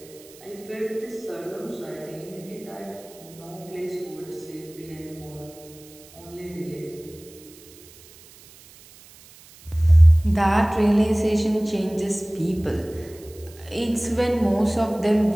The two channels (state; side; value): noise; right; hiss, 22 dB below the sound